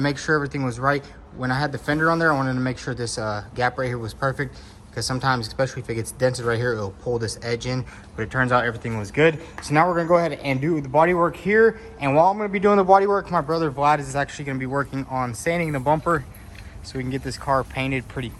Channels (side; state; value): both; identical; correlation 1.00